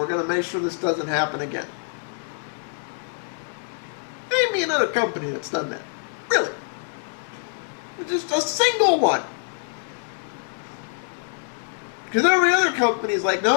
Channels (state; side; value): silent; right; 62 dB below the other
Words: going to make sure this doesn't happen again. Name me another company that's done that. Really. Just a single one. Because every other company is like,